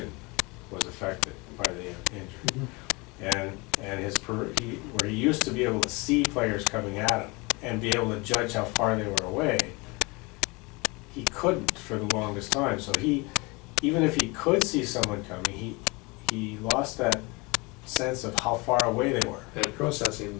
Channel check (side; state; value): right; quieter; 26.6 dB